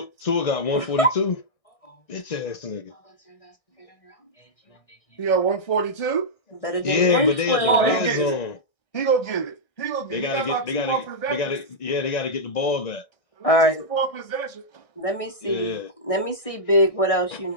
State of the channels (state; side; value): late; right; 1.6 ms